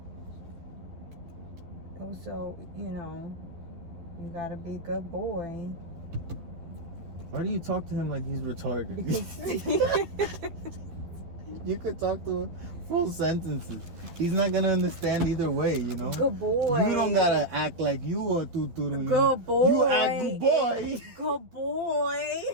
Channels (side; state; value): left; late; 12 ms